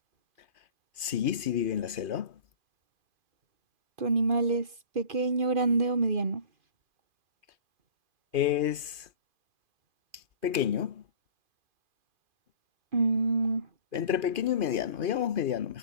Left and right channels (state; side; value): late; left; 2.5 ms